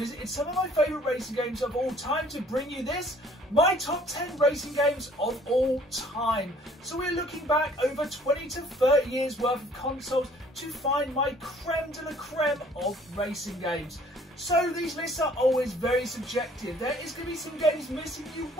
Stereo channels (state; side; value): normal; both; correlation 0.57